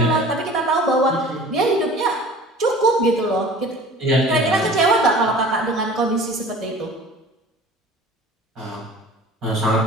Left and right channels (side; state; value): both; normal; correlation 0.43